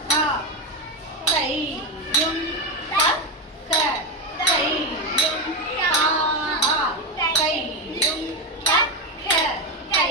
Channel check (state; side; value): normal; both; correlation 0.12